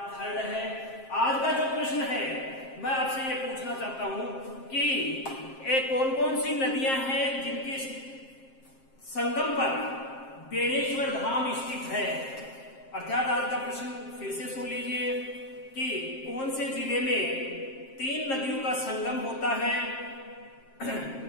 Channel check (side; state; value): right; late; 7.5 ms